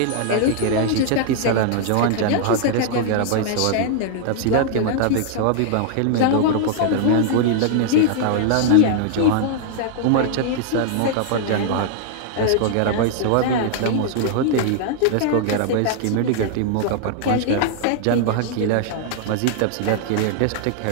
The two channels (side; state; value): both; different; correlation -0.01